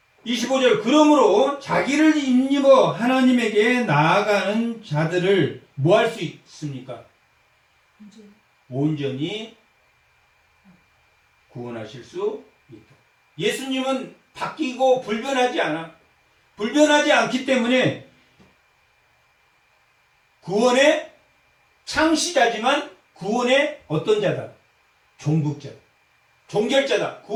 25절 그러므로 자기를 힘입어 하나님에게 나아가는 자들을 뭐 할 수 있습니까? 온전히 구원하실 수 있다. 예수님은 바뀌고 불변하지 않아. 불변하지 않기 때문에 구원의 창시자지만 구원의 어떤 자다? 종국자. 종결자다.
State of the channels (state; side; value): identical; both; correlation 1.00